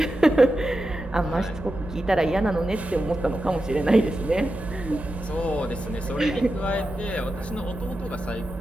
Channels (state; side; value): normal; both; correlation 0.90